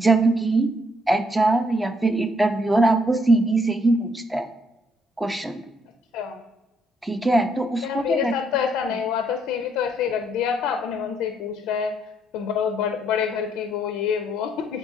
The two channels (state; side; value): normal; both; correlation 0.71